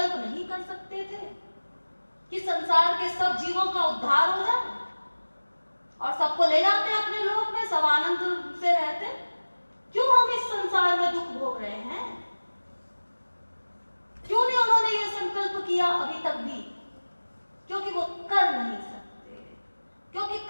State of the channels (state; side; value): inverted; both; correlation -1.00